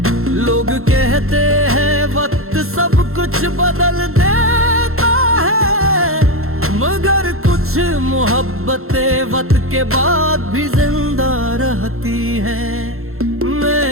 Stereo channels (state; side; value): late; left; 0.62 ms